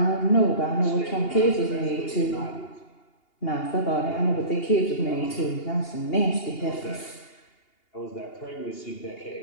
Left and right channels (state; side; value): late; right; 2.8 ms